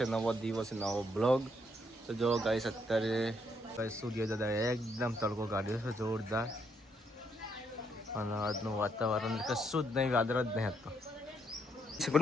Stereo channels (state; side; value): normal; both; correlation 0.73